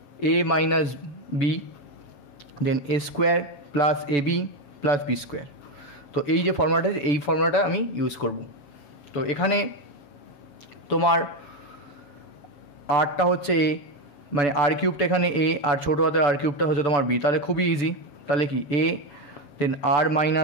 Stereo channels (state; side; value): late; right; 6.9 ms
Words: a minus b, then a square plus a b plus b square. তো এই যে ফর্মুলাটা, এই ফর্মুলাটা আমি ইউজ করব। তো এখানে তোমার আরটা হচ্ছে এ, মানে আর কিউবটা এখানে এ আর ছোটো হাতের আর কিউবটা হচ্ছে তোমার বি। তাহলে খুবই ইজি। তাহলে কি a, then r